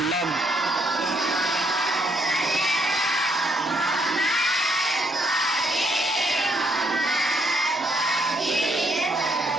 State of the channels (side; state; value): both; normal; correlation 0.72